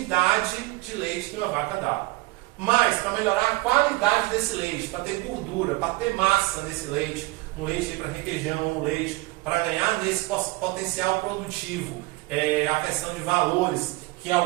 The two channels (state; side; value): quieter; left; 22.5 dB